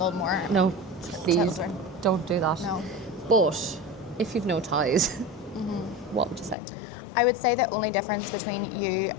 more. No, please children. don't do that. No. But if you've no ties, what would you say? I would say the only difference between you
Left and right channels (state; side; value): drops out; right; at 6.6 s